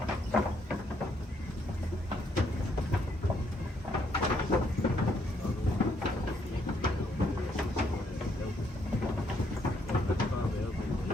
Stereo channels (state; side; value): normal; both; correlation 0.72